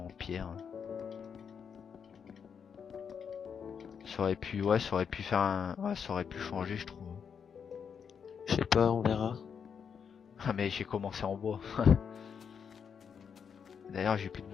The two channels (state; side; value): quieter; right; 7.0 dB